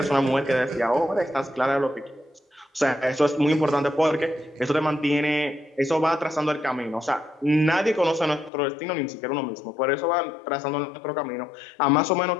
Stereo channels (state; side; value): drops out; right; at 8.5 s